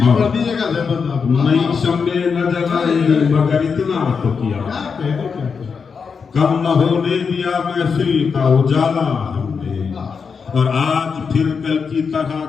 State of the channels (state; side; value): quieter; right; 5.7 dB